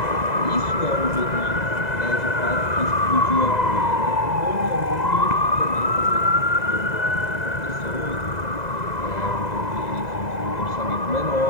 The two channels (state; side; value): late; right; 2.0 ms